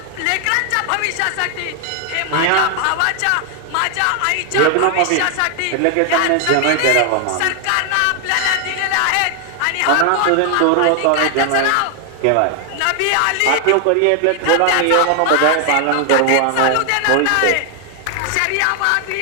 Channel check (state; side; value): different; both; correlation 0.00